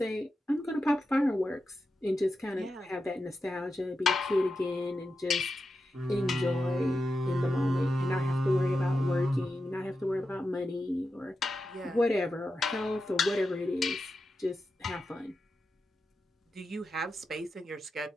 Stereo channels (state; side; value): normal; both; correlation 0.89